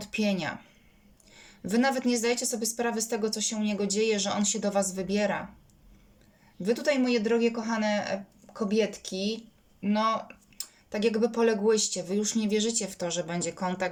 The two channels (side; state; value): both; identical; correlation 1.00